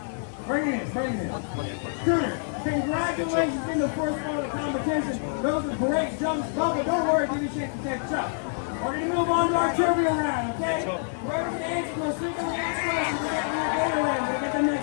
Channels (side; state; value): right; silent; 60 dB below the other